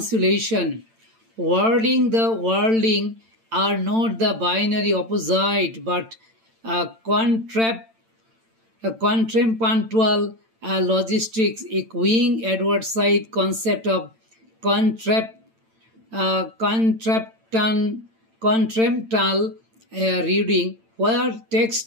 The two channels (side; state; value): left; late; 8.9 ms